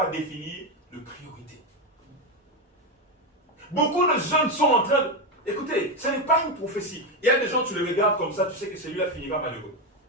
définir de priorité. Beaucoup de jeunes sont en train de... Écoutez, ce n'est pas une prophétie. Il y a des gens, tu les regardes comme ça, tu sais que celui-là finira malheureux.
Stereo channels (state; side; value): normal; both; correlation 0.10